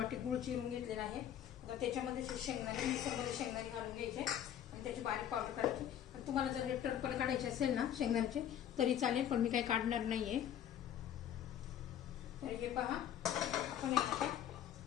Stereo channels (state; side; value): quieter; right; 10.3 dB